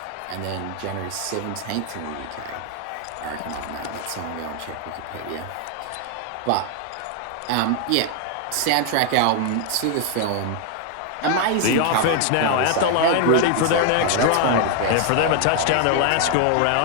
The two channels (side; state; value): both; different; correlation 0.00